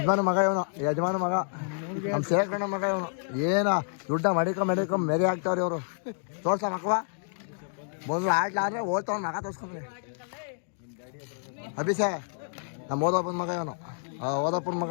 ಮಗ ಇವನು. ನಮ್ಮ ಸೇರ್ಕಣ್ಣ ಮಗ ಇವನು. ಏನ ದುಡ್ಡ ಮಡಿಕ ಮೆರಿ ಆಗ್ತಾವ್ರಿ ಇವರು. ತೋರ್ಸ ಮಕ್ಕವ ಬಂದು ಆಡ್ಲಾದ್ರೆ ಓದ್ತಾವ ಮಗ ತೋರ್ಸ್ಕೊಂಡ್ರಿ. ಅಭಿಷೇ ನಮ್ಮ ಓದಪ್ಪನ ಮಗ ಇವನು. ಓದಪ್ಪನ ಮಗ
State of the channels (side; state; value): right; silent; digital silence